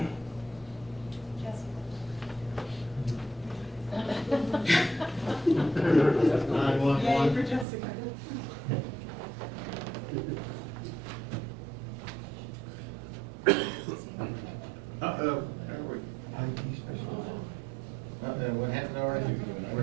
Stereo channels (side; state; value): left; drops out; at 7.7 s